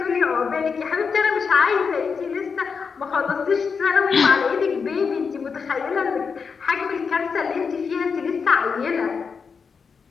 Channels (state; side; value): quieter; right; 5.6 dB